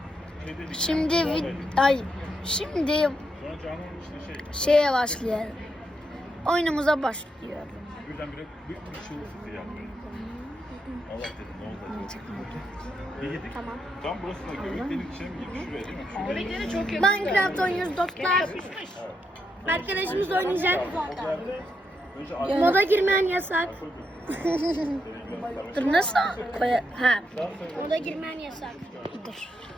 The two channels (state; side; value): normal; both; correlation 0.81